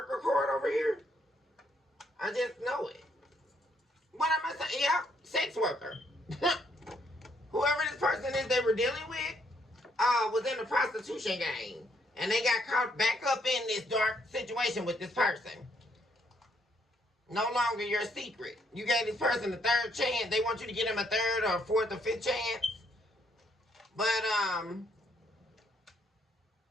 card over here? I just know it. What am I saying? Yeah, sex worker. Whoever this person is they were dealing with was in the prostitution game. And they got caught back up in this dark situation with this person. No longer your secret. You gave this person a third chance. They want you to give them a third or fourth or fifth chance. But,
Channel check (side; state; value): both; normal; correlation 0.71